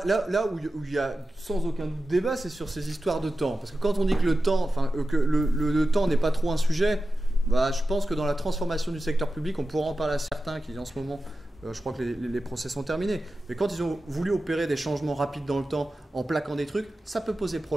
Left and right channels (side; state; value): both; normal; correlation 0.93